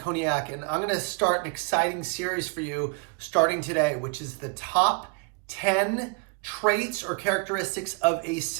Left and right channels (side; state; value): left; quieter; 34.3 dB